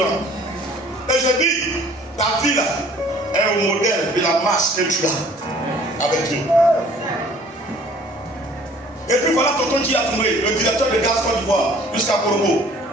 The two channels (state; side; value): normal; both; correlation 0.53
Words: Et je dis, ta vie là est au modèle de la marche que tu as avec Dieu. Et puis voilà tonton qui a tourné, le directeur de Gaz Côte d'Ivoire, jusqu'à Corbeau,